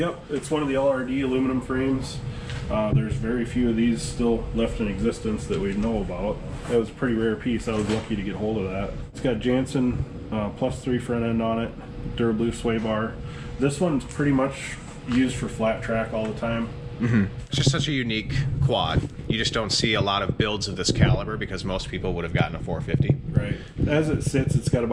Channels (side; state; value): both; identical; correlation 1.00